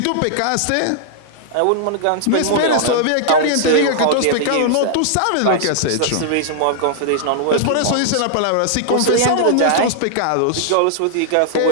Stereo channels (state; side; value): different; both; correlation -0.01